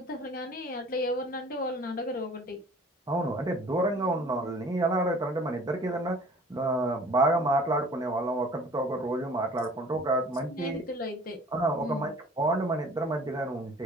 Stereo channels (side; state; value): both; normal; correlation 0.49